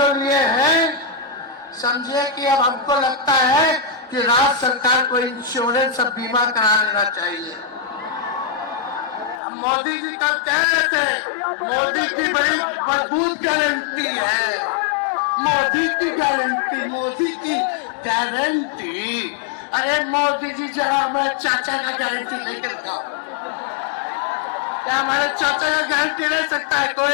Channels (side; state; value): right; drops out; at 9.4 s